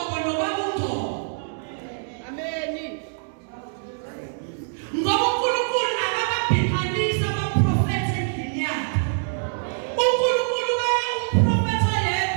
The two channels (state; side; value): silent; left; digital silence